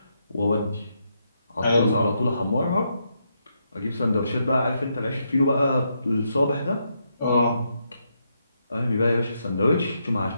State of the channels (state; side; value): inverted; both; correlation -0.80